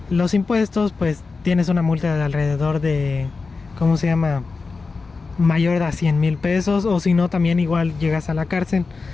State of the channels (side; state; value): right; quieter; 4.3 dB